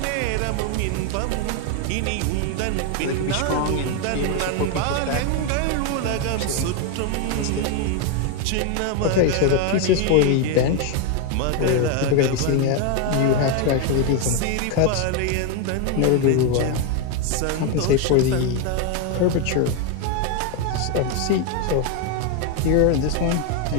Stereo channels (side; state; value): both; different; correlation 0.01